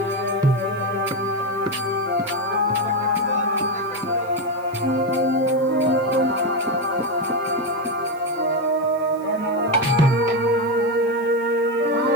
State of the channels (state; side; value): noise; right; hiss, 26 dB below the sound